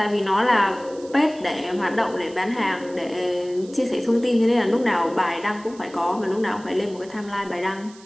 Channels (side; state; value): right; noise; hiss, 23 dB below the sound